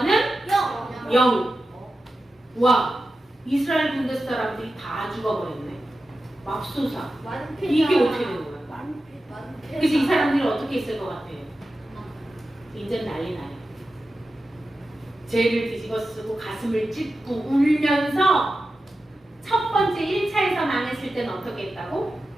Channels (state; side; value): normal; both; correlation 0.92